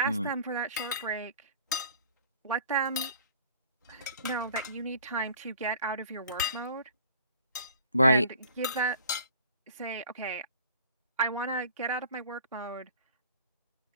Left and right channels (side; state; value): both; inverted; correlation -0.48